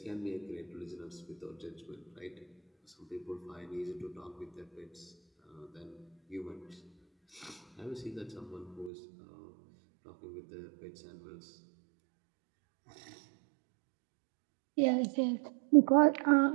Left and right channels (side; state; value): left; drops out; at 8.9 s